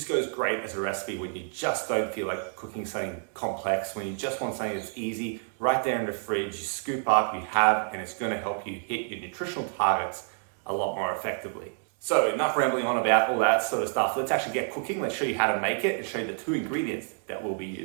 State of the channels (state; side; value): silent; left; 59 dB below the other